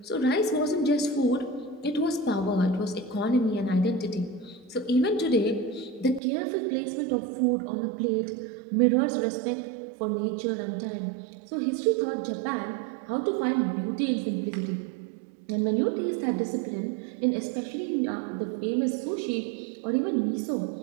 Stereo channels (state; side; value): drops out; left; at 6.2 s